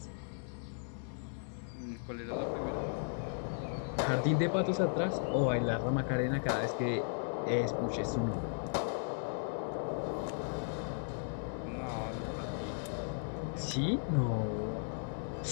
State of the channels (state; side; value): silent; right; 54 dB below the other